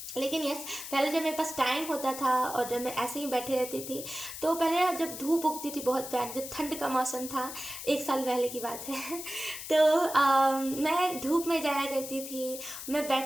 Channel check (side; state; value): left; noise; hiss, 9 dB below the sound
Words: लेकिन यस, पहले जब मेरे पास टाइम होता था और जब मैं ऐसे ही बैठे रहती थी, तो पहले ना जब धूप उगती थी बहुत प्यारी, जब ठंड का मौसम था, 1 साल पहले की बात है तो मैं धूप में जाया करती थी, मैं